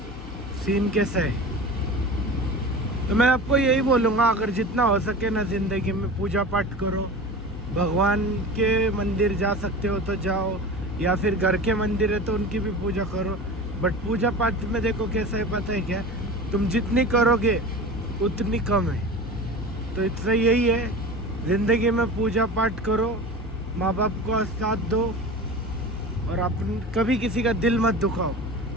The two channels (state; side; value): noise; left; hum, 13 dB below the sound